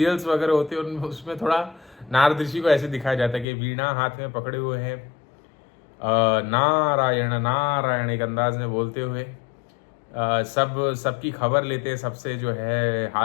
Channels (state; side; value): drops out; right; at 3.5 s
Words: वगैरह होते हैं, उसमें थोड़ा नारद ऋषि को ऐसे दिखाया जाता है कि वीणा हाथ में पकड़े हुए हैं, नारायण नारायण एक अंदाज में बोलते हुए सबकी खबर लेते हैं, सबसे जो है